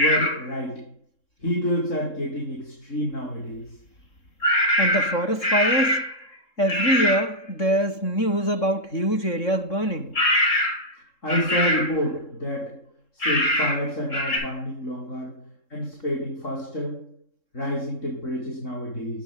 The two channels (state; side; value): late; right; 3.7 ms